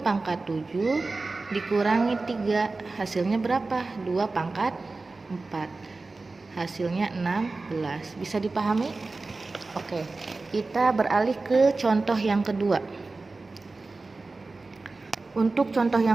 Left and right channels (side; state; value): left; quieter; 3.6 dB